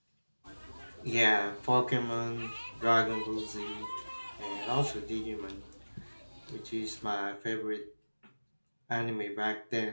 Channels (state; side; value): inverted; both; correlation -1.00